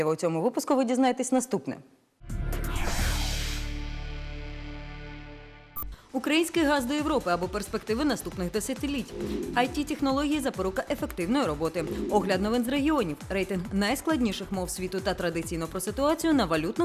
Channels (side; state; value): both; identical; correlation 1.00